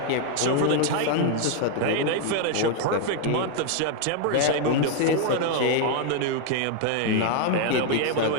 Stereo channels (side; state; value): both; different; correlation 0.00